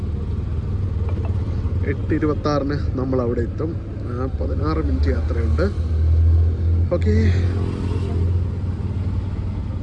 എട്ട് 26 നമ്മൾ അവിടെ എത്തും. 16 മിനിറ്റ് യാത്രയുണ്ട്. ഓക്കെ,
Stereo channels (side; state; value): both; identical; correlation 1.00